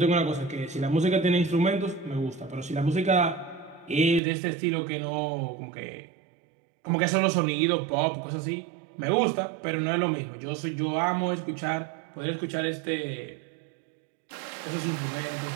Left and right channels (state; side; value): drops out; left; at 4.2 s